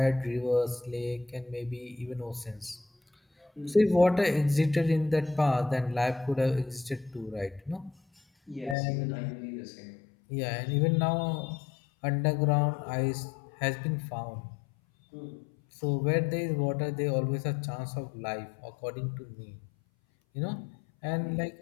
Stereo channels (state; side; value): drops out; right; at 8.8 s